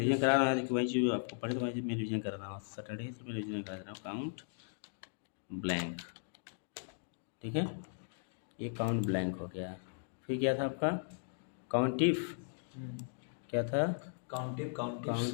करा रहा है कि भाई जो आपको पढ़े तो भाई मैं रिविजन कर रहा हूँ, सैटरडे से मैं रिविजन कर रहा हूँ। काउंट ब्लैंक, ठीक है, ये काउंट ब्लैंक हो गया। फिर क्या था आपका काउंटिफ, क्या था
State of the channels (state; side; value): silent; right; digital silence